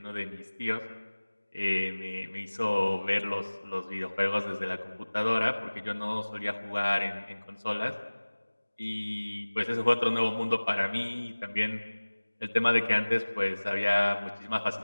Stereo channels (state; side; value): inverted; both; correlation -1.00